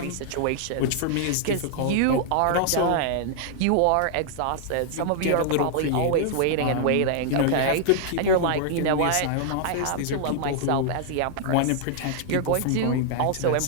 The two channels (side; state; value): both; different; correlation 0.00